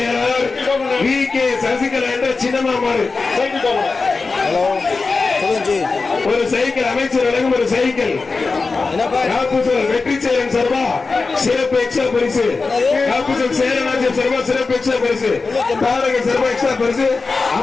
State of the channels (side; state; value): right; quieter; 4.1 dB